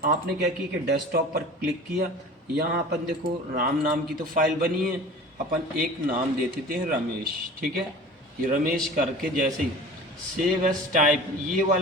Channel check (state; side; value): normal; both; correlation 0.40